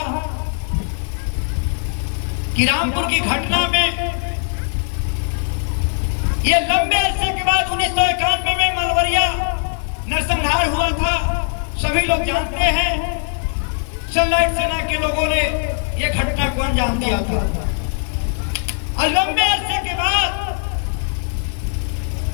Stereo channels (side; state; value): right; silent; digital silence